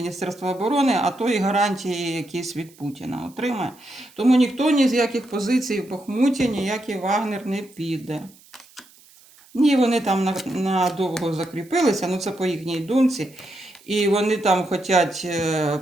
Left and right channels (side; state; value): right; noise; hiss, 27 dB below the sound